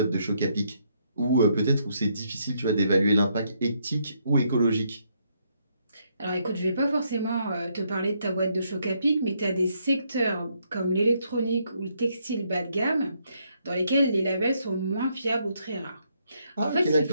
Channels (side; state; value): both; inverted; correlation -0.74